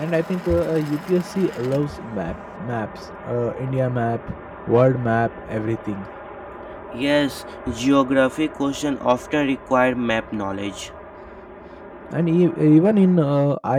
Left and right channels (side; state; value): both; identical; correlation 1.00